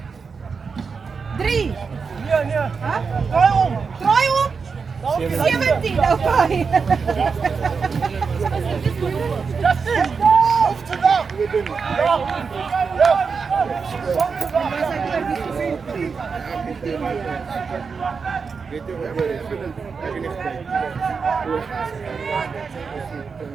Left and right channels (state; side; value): quieter; left; 5.3 dB